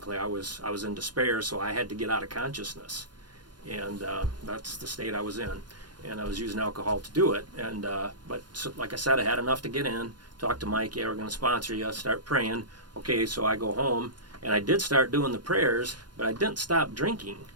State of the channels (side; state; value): left; late; 0.71 ms